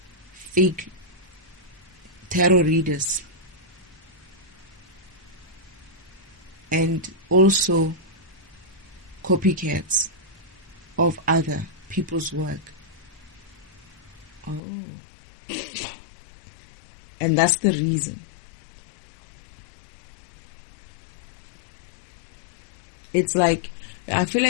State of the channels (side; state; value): right; drops out; at 14.6 s